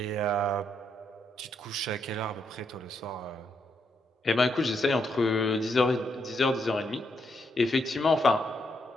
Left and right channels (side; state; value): both; normal; correlation 0.78